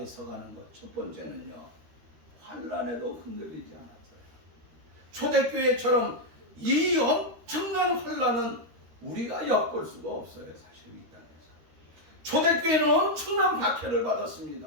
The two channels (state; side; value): late; left; 13 ms